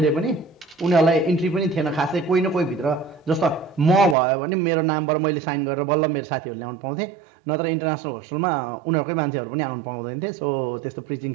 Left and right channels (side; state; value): left; drops out; at 4.2 s